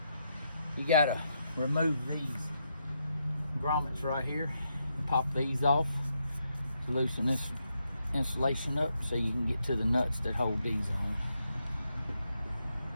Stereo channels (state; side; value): inverted; both; correlation -0.81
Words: You gotta remove these grommets right here and pop these off to loosen this insulation up so you can get to the nuts that hold these on.